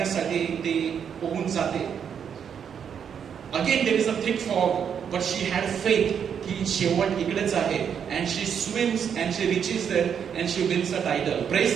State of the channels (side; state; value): left; quieter; 7.8 dB